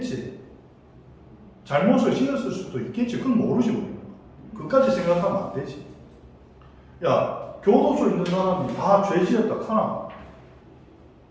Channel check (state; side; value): identical; both; correlation 1.00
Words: 잘못을 지었을 수도 있겠지. 그건 모르지 우리는. 그까지 생각하면 안 되지. 야, 교도소 있는 사람이 다 죄 지었다 카나?